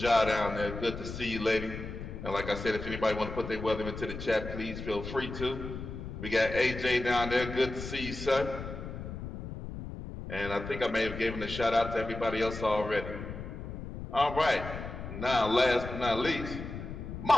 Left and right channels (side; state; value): left; noise; rumble, 8 dB below the sound